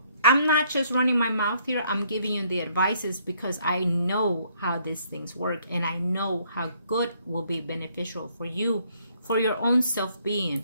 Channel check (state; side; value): inverted; both; correlation -0.67